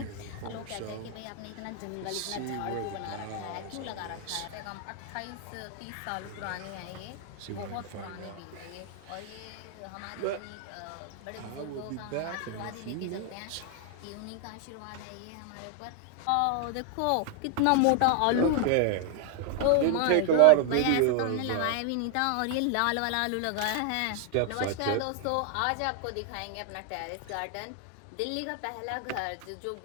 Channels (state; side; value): different; both; correlation 0.00